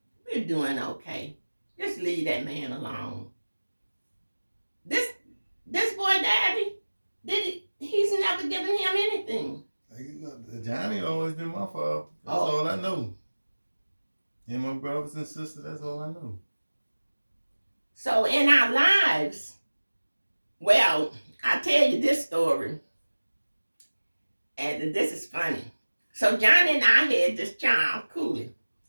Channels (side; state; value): both; inverted; correlation -1.00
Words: We're doing okay. Just leave that man alone. This boy daddy, he's never given him anything. Johnny always been my father. That's all I know. And my brothers and sisters, that's all I know. So in our lives, well, I tell you this story, and this is funny. So Johnny and I had this child, Cooley.